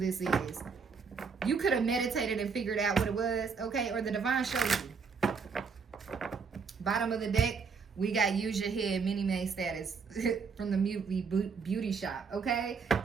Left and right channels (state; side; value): quieter; left; 5.4 dB